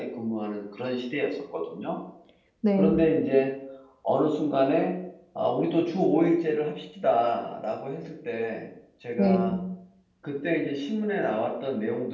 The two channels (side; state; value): both; identical; correlation 1.00